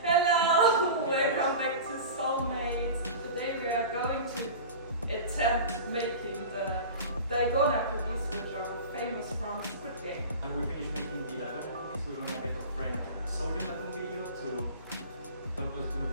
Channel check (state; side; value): inverted; both; correlation -0.33